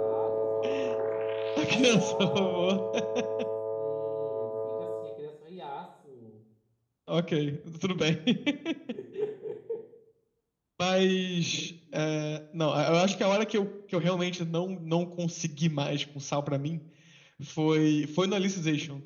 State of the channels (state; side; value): identical; both; correlation 1.00